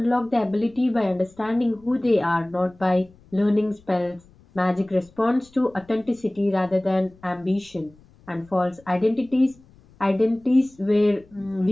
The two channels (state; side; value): noise; left; rumble, 28 dB below the sound